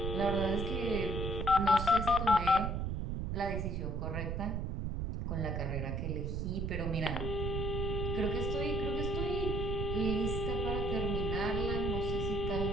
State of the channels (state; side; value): noise; right; rumble, 1 dB below the sound